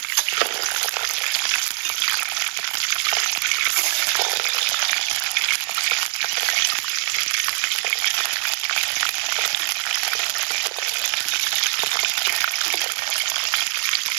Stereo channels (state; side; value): silent; left; 63 dB below the other